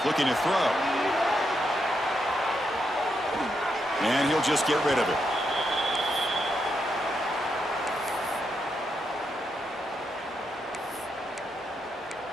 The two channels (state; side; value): normal; both; correlation 0.82